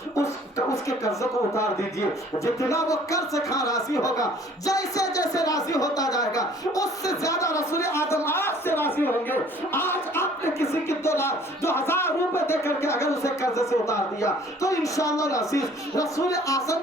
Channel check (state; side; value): normal; both; correlation 0.54